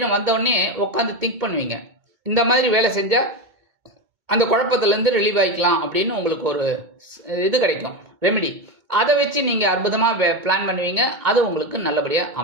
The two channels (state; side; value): late; left; 2.2 ms